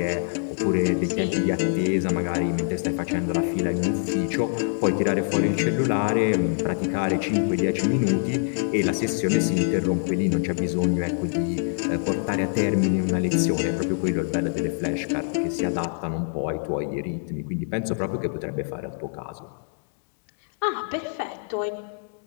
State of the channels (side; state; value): right; silent; digital silence